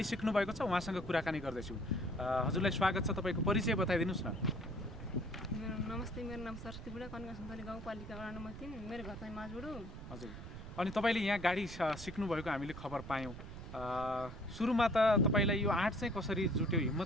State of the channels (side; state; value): right; noise; rumble, 11 dB below the sound